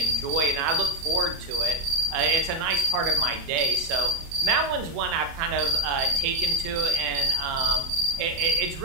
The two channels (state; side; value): late; left; 30 ms